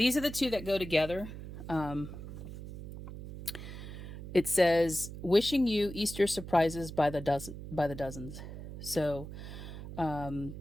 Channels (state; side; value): noise; right; hum, 11 dB below the sound